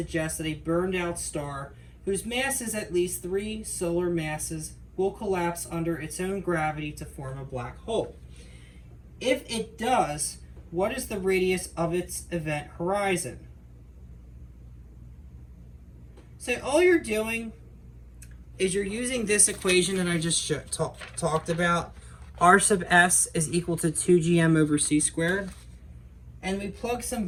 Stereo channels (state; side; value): identical; both; correlation 1.00